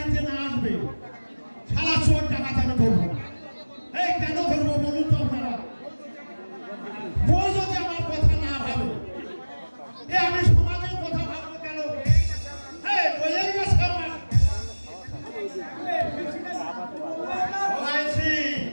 না আসবে সারা চোর টাকা আমি ধরবো না এই কেন ধরবো বলুন তো আপনারা বউ যদি আমার কথা না ভাবে আমি সমাজের কথা ভাববো কেন বইয়ের কাছে আমার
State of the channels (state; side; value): inverted; both; correlation -1.00